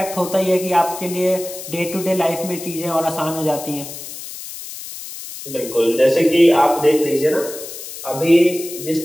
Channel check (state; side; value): noise; left; hiss, 11 dB below the sound